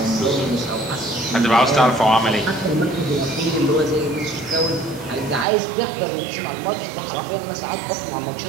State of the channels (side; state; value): left; drops out; at 5.5 s